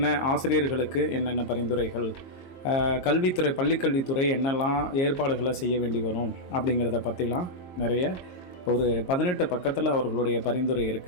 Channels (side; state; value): right; late; 22 ms